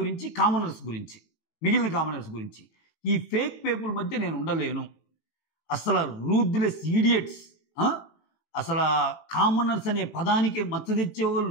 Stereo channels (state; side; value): late; right; 18 ms